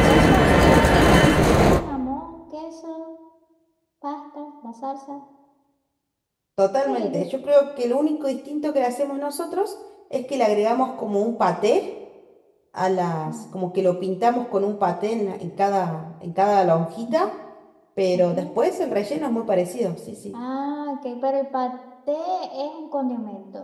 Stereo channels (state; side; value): identical; both; correlation 1.00